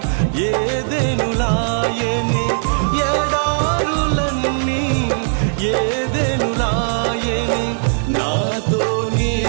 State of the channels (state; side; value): silent; left; digital silence